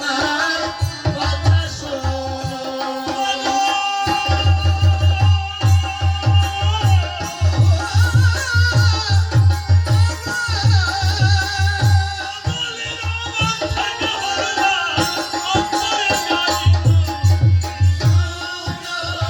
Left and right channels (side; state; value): both; identical; correlation 1.00